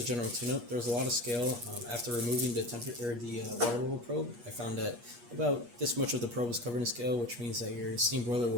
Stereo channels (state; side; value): late; left; 8.4 ms